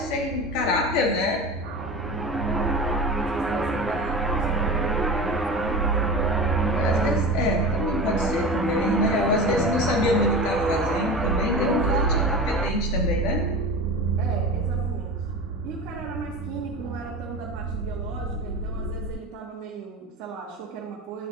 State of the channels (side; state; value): both; normal; correlation 0.31